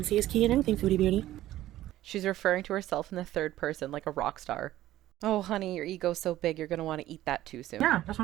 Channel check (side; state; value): left; quieter; 14.4 dB